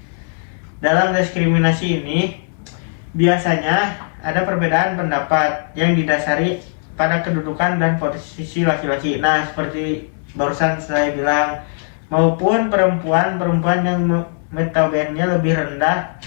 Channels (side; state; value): right; silent; 65 dB below the other